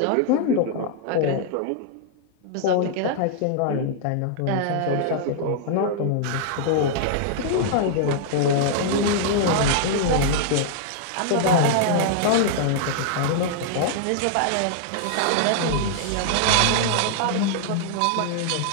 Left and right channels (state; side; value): different; both; correlation -0.01